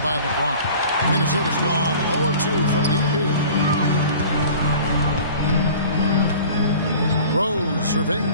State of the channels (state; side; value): inverted; both; correlation -0.44